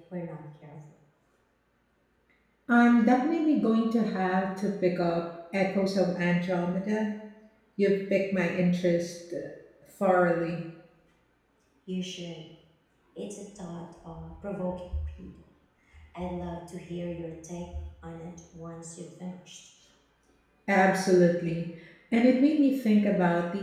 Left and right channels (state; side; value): identical; both; correlation 1.00